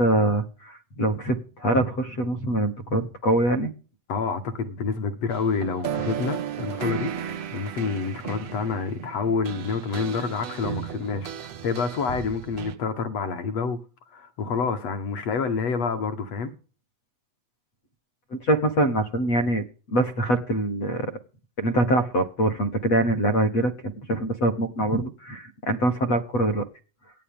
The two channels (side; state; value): right; late; 8.2 ms